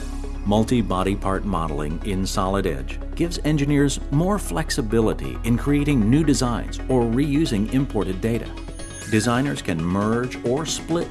Multi-body part modeling in Solid Edge gives engineers more flexibility in creating new designs or reusing imported data. Designers can merge or split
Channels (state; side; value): identical; both; correlation 1.00